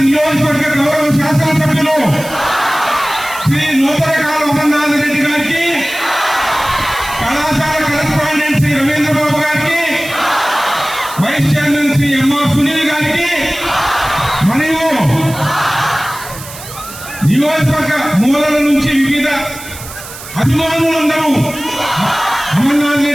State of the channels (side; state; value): right; noise; hiss, 14 dB below the sound